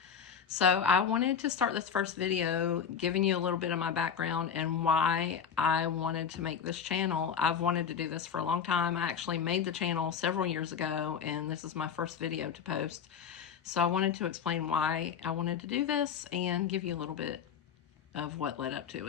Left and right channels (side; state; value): right; quieter; 7.3 dB